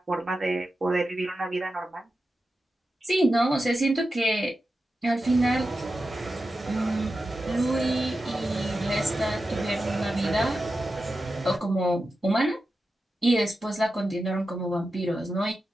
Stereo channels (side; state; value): both; normal; correlation 0.91